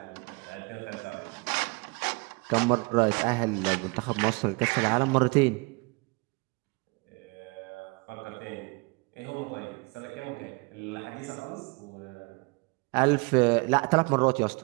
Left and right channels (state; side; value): quieter; left; 28.4 dB